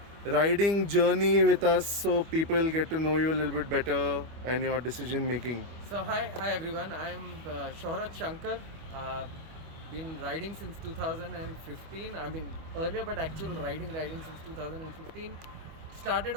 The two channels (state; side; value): late; left; 25 ms